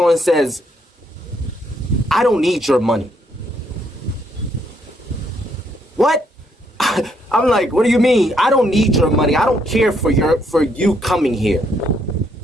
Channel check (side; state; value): both; normal; correlation 0.72